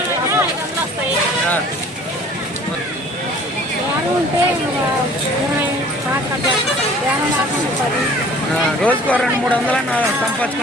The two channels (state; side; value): normal; both; correlation 0.50